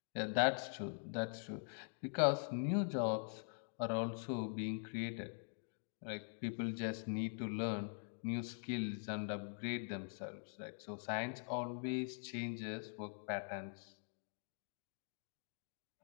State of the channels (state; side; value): silent; right; digital silence